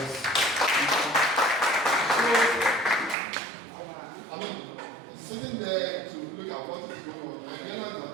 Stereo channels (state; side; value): drops out; left; at 3.2 s